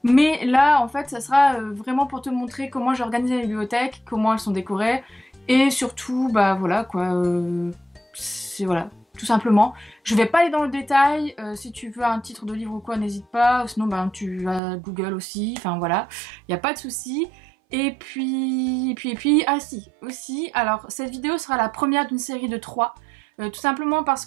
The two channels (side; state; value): left; drops out; at 14.6 s